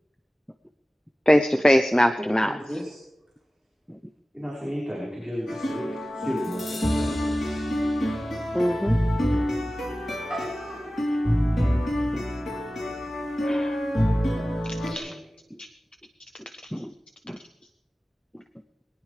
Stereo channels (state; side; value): normal; both; correlation 0.96